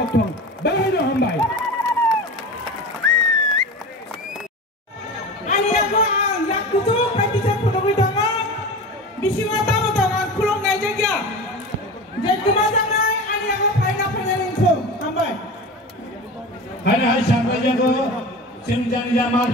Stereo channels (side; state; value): both; normal; correlation 0.30